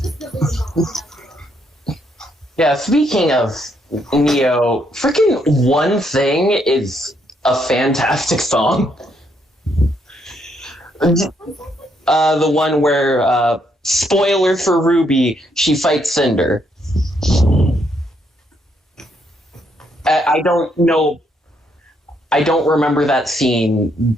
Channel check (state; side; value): normal; both; correlation 0.74